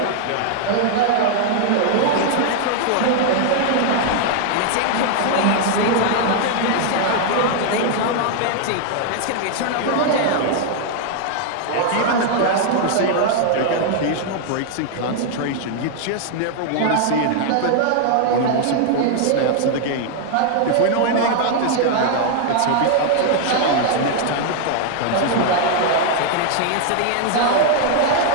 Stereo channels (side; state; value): both; different; correlation 0.00